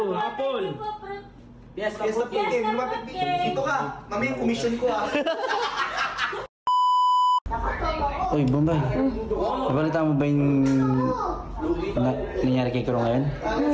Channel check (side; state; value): both; identical; correlation 1.00